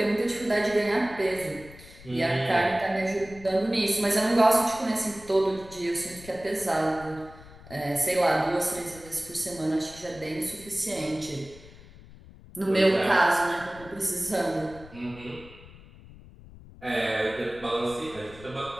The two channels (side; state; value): left; noise; rumble, 20 dB below the sound